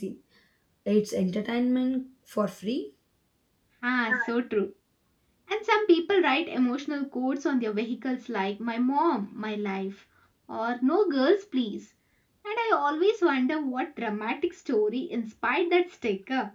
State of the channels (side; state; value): both; identical; correlation 1.00